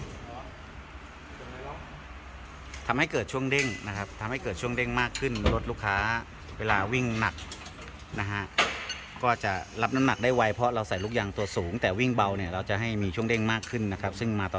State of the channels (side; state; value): both; identical; correlation 1.00